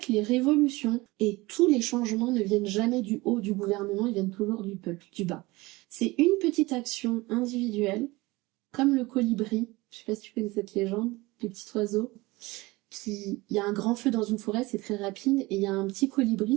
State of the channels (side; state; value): left; quieter; 21.6 dB